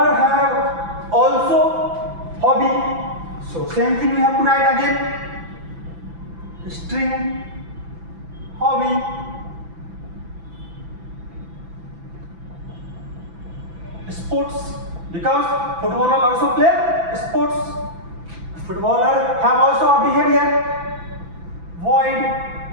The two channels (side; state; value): left; late; 6.0 ms